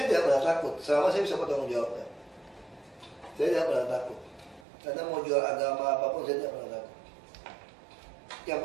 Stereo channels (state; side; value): drops out; left; at 4.7 s